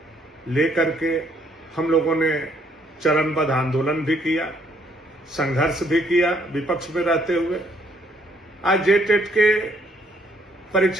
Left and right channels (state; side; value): normal; both; correlation 0.68